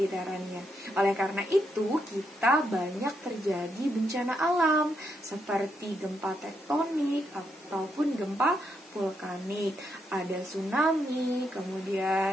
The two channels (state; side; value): normal; both; correlation 0.79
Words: Oleh karena itu, kita banyak terjadi bencana alam seperti gempa tektonik ataupun gempa vulkanik. Ada tsunami,